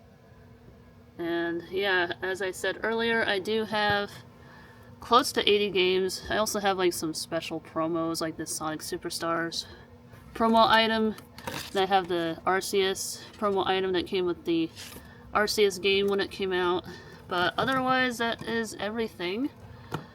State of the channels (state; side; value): identical; both; correlation 1.00